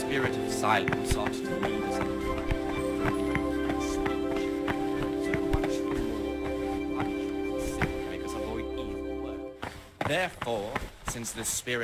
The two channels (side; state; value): both; identical; correlation 1.00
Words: of silence ought to lead us in so much more sin make us avoid evil work. Therefore, since the